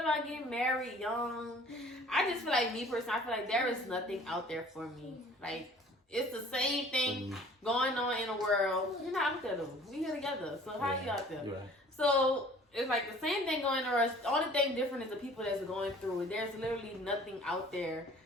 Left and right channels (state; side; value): normal; both; correlation 0.51